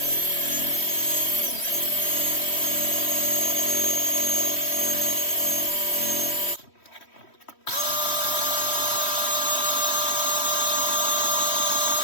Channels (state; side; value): late; right; 3.1 ms